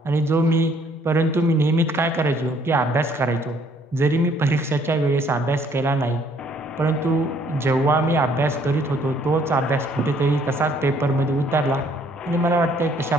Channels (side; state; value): both; normal; correlation 0.63